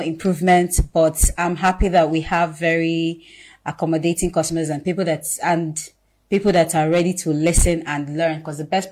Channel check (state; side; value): identical; both; correlation 1.00